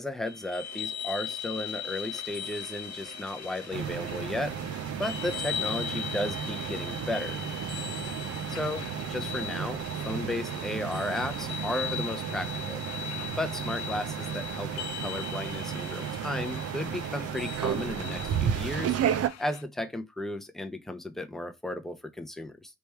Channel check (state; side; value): normal; both; correlation 0.48